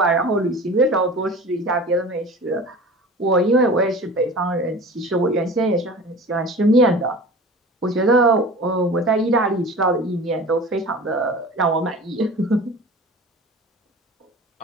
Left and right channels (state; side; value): normal; both; correlation 0.38